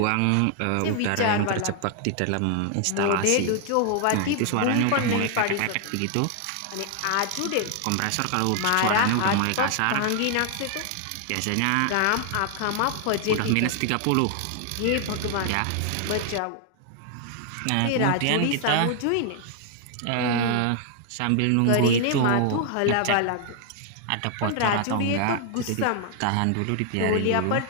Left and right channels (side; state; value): both; different; correlation 0.00